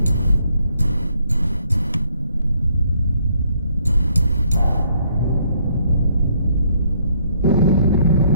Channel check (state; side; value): inverted; both; correlation -0.69